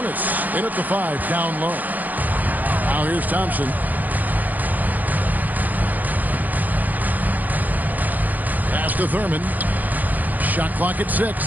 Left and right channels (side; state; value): left; late; 0.082 ms